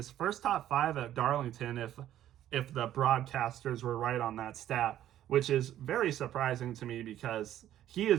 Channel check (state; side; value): quieter; left; 12.1 dB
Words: first top five at Darlington, if the broadcasters were right on that stat, which is very surprising to me because he